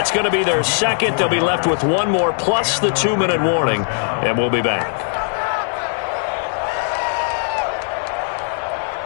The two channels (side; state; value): right; silent; digital silence